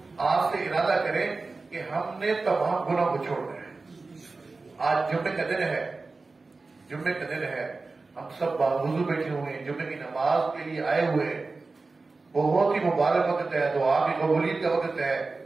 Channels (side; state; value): left; quieter; 3.8 dB